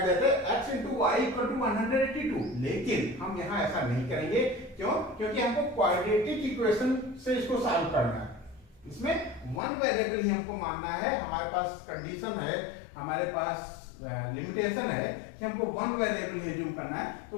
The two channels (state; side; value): drops out; right; at 9.6 s